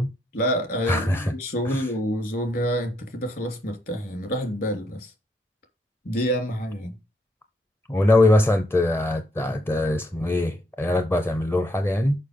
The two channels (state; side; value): normal; both; correlation 0.75